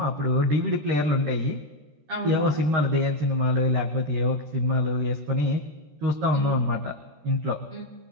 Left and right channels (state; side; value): late; left; 13 ms